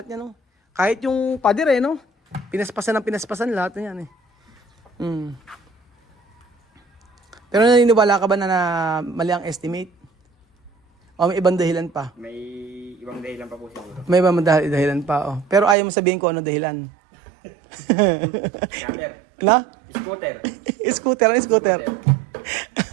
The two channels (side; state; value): left; drops out; at 15.8 s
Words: yan, no? Kahit yung pader no? Pinaspasan lahat na yan eh. Pero naniniwala ka ba na mali ang estimate? O may ibang dahilan pa? May ibang dahilan pa po siguro. May ibang dahilan pa, Pero ayaw mo sabihin ko ano dahilan. Scatter. Na? Scooter. Scooter. Ano scooter?